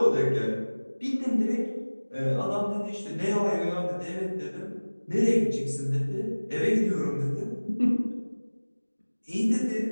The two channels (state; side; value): inverted; both; correlation -1.00